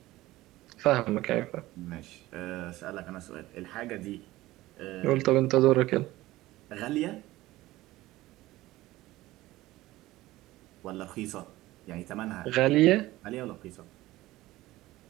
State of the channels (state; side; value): quieter; left; 17.4 dB